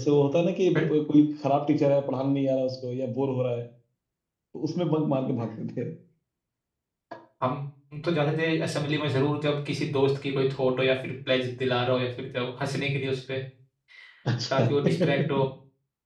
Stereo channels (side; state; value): both; identical; correlation 1.00